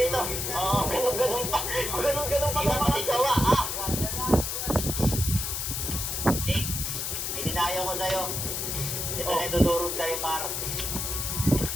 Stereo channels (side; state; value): left; noise; hiss, 2 dB below the sound